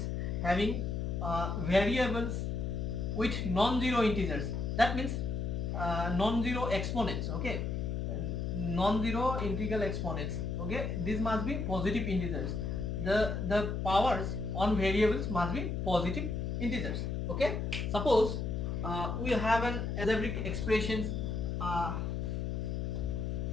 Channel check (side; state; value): left; noise; hum, 1 dB below the sound